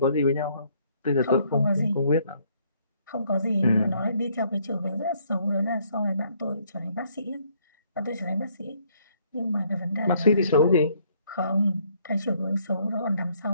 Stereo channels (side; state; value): both; inverted; correlation -0.66